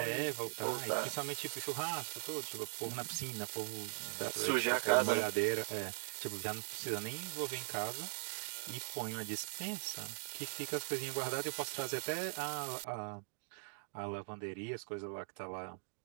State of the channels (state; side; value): silent; left; digital silence